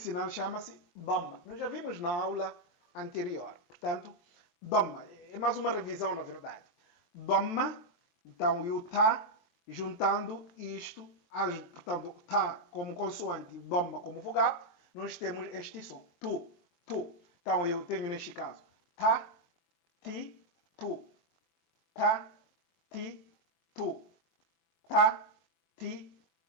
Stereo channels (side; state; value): right; late; 23 ms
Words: chama-se Dhamma. Nós já vimos na aula anterior. Portanto, Dhamma. É mais uma revisão, na verdade. Dhamma, então, e o Ta, juntando isto, portanto, Ta como consoante e Dhamma como vogal, nós temos este som. Tu, tu. Então, eu tenho neste caso Ta, Ti, Tu. Ta, Ti, Tu. Ta, ti,